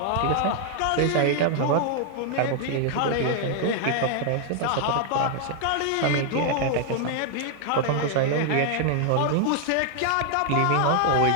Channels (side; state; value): both; different; correlation 0.00